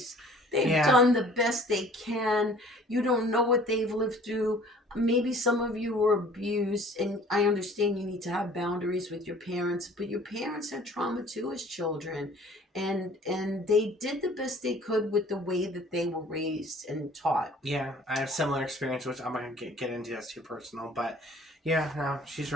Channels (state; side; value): normal; both; correlation 0.51